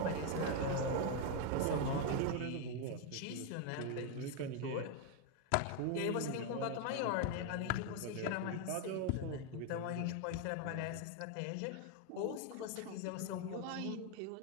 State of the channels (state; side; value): different; both; correlation 0.01